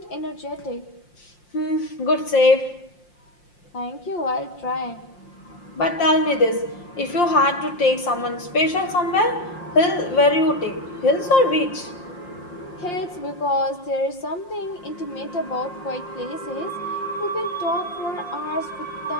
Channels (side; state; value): right; late; 5.7 ms